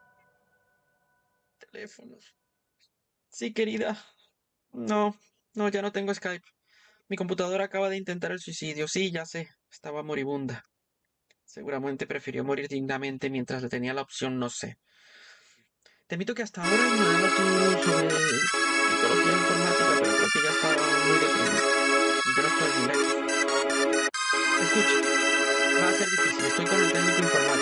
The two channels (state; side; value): identical; both; correlation 1.00